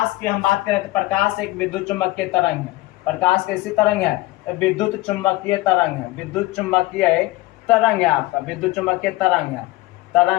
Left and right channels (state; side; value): quieter; right; 19.2 dB